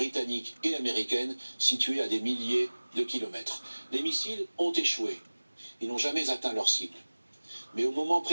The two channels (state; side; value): inverted; both; correlation -1.00